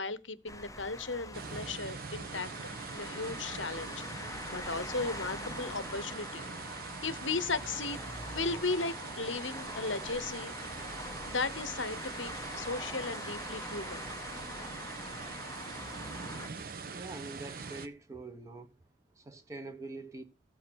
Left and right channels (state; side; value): normal; both; correlation -0.02